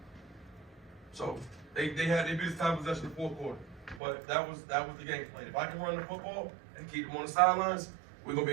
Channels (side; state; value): left; drops out; at 4.0 s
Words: So they beat us time possession in the fourth quarter. But that was the game plan. If I can run the football and keep them on the sidelines, we're gonna